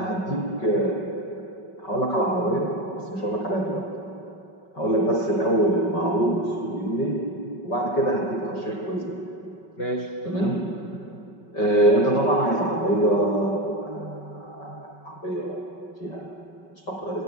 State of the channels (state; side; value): late; right; 5.3 ms